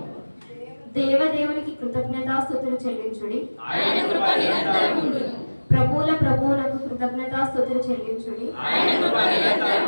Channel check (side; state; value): both; inverted; correlation -1.00